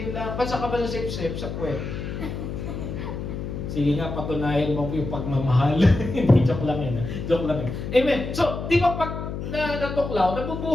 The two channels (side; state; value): left; noise; hum, 6 dB below the sound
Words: lang. Ba't ka ba sa sip-sip? Sa puwet. Sige nga, patunayan mo yung pagmamahal. Hindi, joke lang Joke lang Amen. So, di ba pag natuklaw,